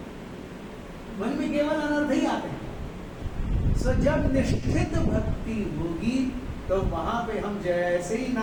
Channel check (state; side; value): identical; both; correlation 1.00